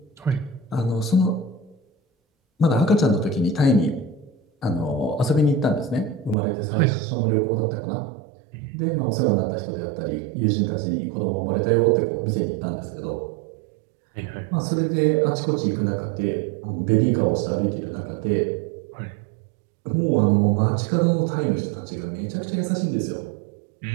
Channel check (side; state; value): left; drops out; at 6.4 s